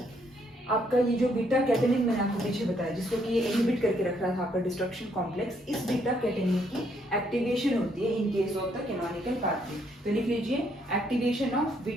आपका ये जो बीटा कैटेनिन मैंने आपको पीछे बताया, जिसको कि ये इनहिबिट करके रख रहा था आपका डिस्ट्रक्शन कॉम्प्लेक्स, इस बीटा कैटेनिन की एक्टिवेशन होती है in case of the canonical pathway. तो लिख लीजिए, activation of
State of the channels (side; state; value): both; normal; correlation 0.71